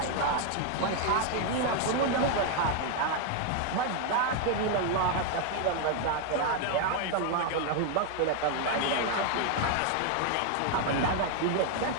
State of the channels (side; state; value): both; different; correlation 0.00